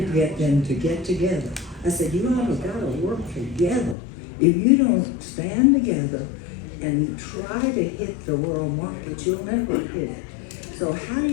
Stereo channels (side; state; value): right; drops out; at 4.0 s